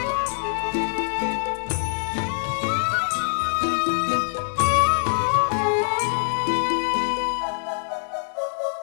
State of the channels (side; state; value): right; silent; digital silence